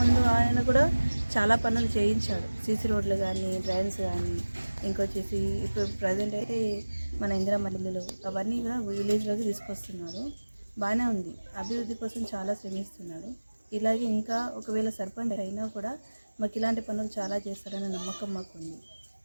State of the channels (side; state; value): both; inverted; correlation -1.00